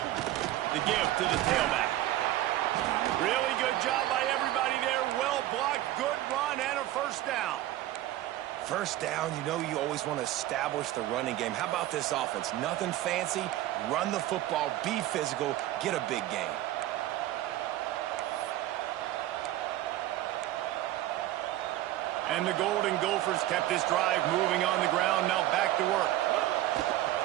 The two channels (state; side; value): quieter; left; 14.5 dB